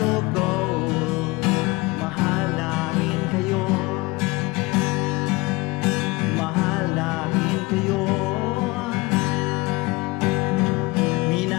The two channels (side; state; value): right; quieter; 23.5 dB